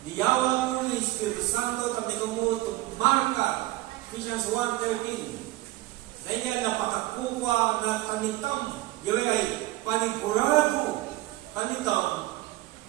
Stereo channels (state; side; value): quieter; left; 17.7 dB